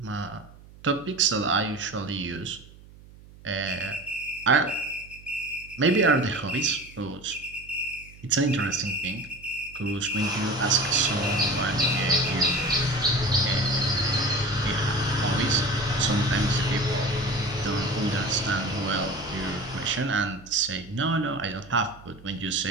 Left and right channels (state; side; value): noise; right; hum, 21 dB below the sound